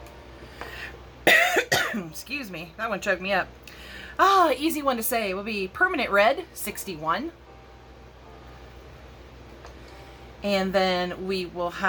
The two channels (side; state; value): both; identical; correlation 1.00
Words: Excuse me, that one choked me up. Easy one to say. It will be Permanent Red, 61. And then we will